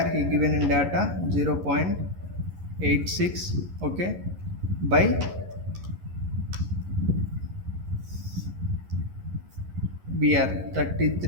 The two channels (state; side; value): late; left; 11 ms